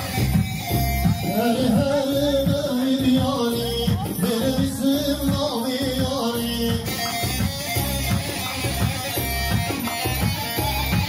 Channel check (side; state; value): both; identical; correlation 1.00